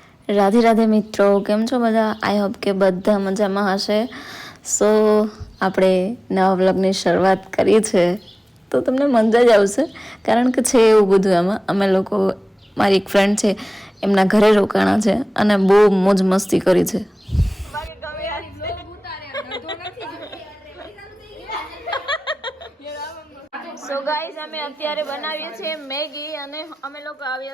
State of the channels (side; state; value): both; normal; correlation 0.98